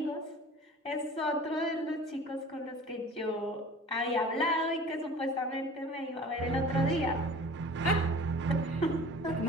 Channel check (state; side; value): normal; both; correlation 0.43